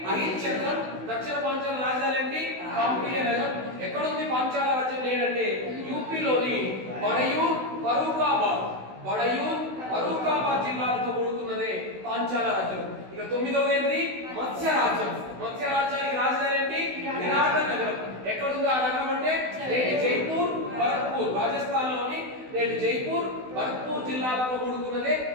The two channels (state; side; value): late; left; 16 ms